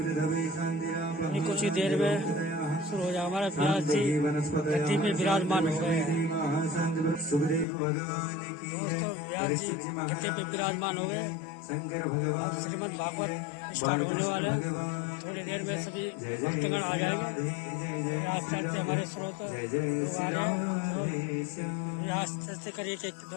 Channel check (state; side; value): drops out; right; at 7.7 s